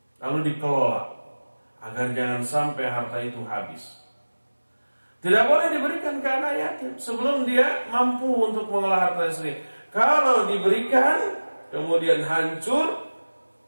Lalu dikelola agar jangan sampai harta itu habis. Tidak boleh diberikan ke anak yatim sebelum dia mampu untuk mengelola harta sendiri. Kalau diberikan kemudian hancur,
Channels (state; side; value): inverted; both; correlation -1.00